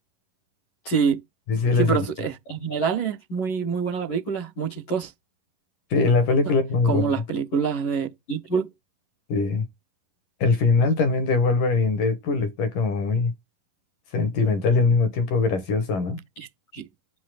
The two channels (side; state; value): right; late; 11 ms